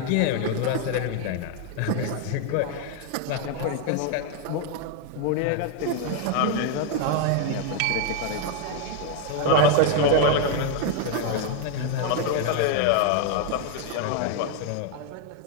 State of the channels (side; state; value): both; different; correlation 0.01